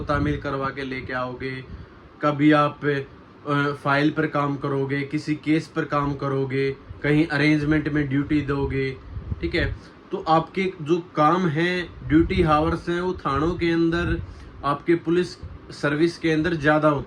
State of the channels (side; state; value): both; identical; correlation 1.00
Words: तामील करवा के लेके आओगे, कभी आप फाइल पर काम करोगे, किसी केस पर काम करोगे, कहीं अरेंजमेंट में ड्यूटी दोगे, ठीक है, तो आपके जो काम हैं, ड्यूटी हावर्स हैं, वो थानों के अंदर, आपके पुलिस सर्विस के अंदर ज़्यादा